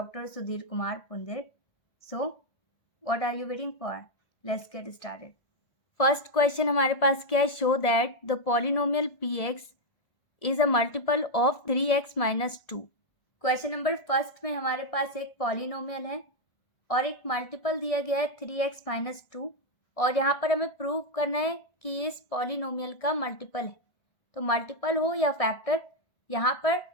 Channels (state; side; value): late; right; 1.7 ms